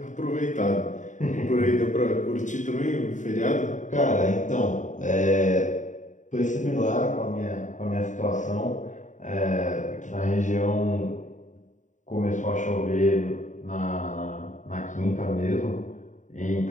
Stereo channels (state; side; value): late; right; 0.36 ms